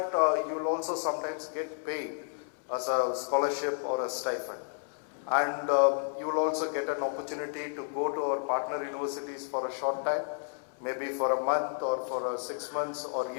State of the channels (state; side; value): silent; right; digital silence